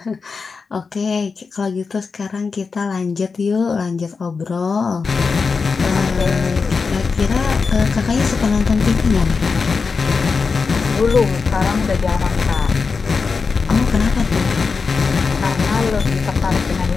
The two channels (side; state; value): right; quieter; 4.9 dB